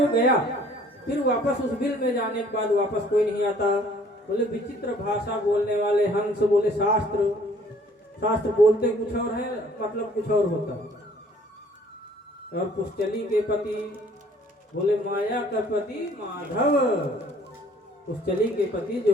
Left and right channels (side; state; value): both; normal; correlation 0.57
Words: गया, फिर वापस उस बिल में जाने के बाद वापस कोई नहीं आता। बोले विचित्र भाषा बोलने वाले हंस, बोले शास्त्र। शास्त्र बोलते कुछ और है, मतलब कुछ और होता है। और पुष्चली के पति, बोले माया का पति माधव। पुष्चली के पति जो